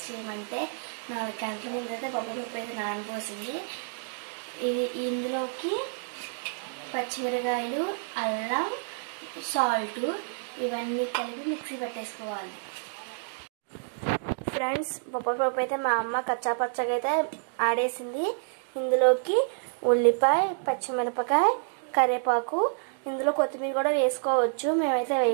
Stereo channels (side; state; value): left; silent; digital silence